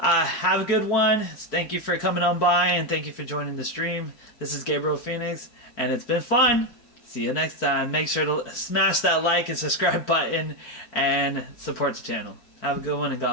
a good one. Thank you for coming on by, and thank you for joining the stream. This is Gabriel Phoenix, and it's been fun. See you next time. Make sure to smash that like and subscribe button and support the channel. Have a good one, and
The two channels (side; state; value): right; late; 4.6 ms